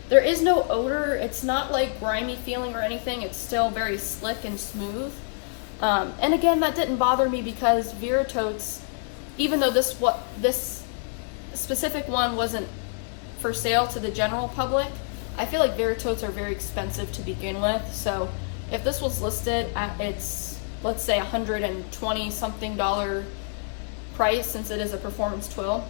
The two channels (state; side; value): silent; right; 58 dB below the other